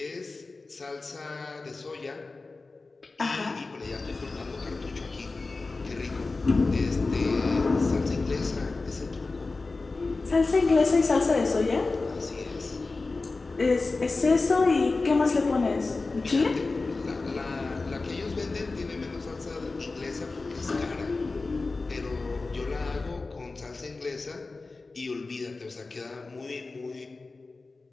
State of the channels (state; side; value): quieter; right; 3.6 dB